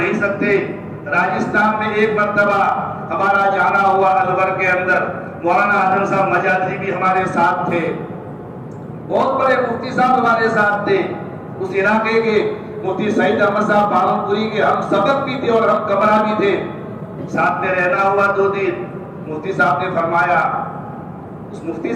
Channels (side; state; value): both; identical; correlation 1.00